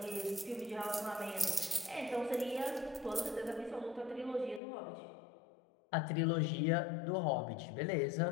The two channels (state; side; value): drops out; right; at 4.6 s